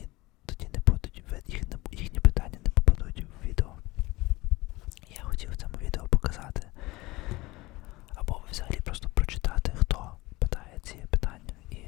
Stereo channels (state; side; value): quieter; right; 20.8 dB